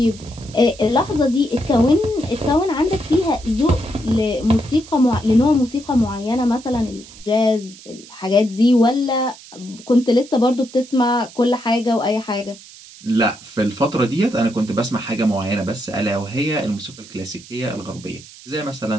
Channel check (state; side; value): noise; right; hiss, 19 dB below the sound